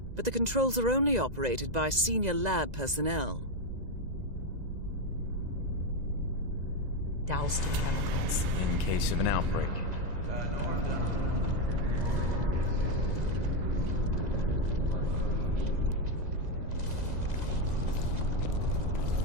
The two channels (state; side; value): late; left; 2.0 ms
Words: but the controls are only operated by senior lab personnel. Doused in chemicals. In case of an outbreak.